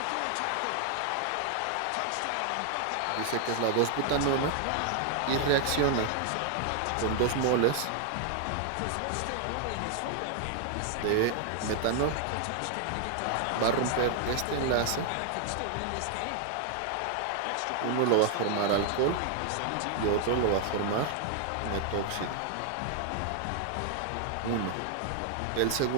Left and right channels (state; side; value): different; both; correlation 0.00